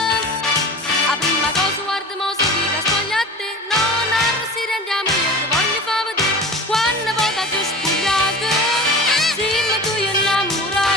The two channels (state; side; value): normal; both; correlation 0.36